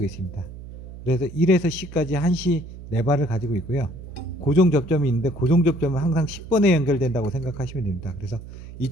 있습니다. 그래서 1에서 10까지 한시 4발을 가지고 있고요. 고정 접점이 있는데 고정 접점은 항상 10번에 연결된다고 생각하시면 됩니다. 그래서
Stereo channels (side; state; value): right; noise; hum, 14 dB below the sound